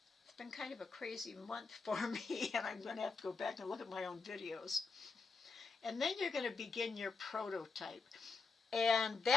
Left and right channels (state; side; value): quieter; right; 4.4 dB